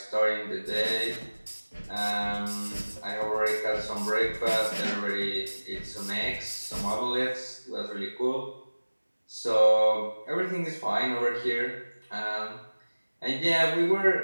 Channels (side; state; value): both; inverted; correlation -1.00